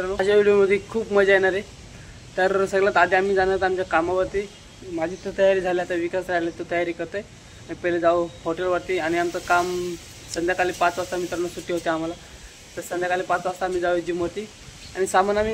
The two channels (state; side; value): identical; both; correlation 1.00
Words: माझ्या व्हिडिओमध्ये खूप मजा येणार आहे. तर सगळ्यात आधी आम्ही जाणार आमच्या कामावरती. माझी तर तयारी झाली, आता विकास राहिले तो तयारी करतोय. पहिले जाऊ हॉटेलवरती आणि आमचं काम संध्याकाळी 5 वाजता मित्रांनो सुट्टी होते आम्हाला. तर संध्याकाळी 5 वाजता आम्ही जाऊ जिमवरती. आणि सामान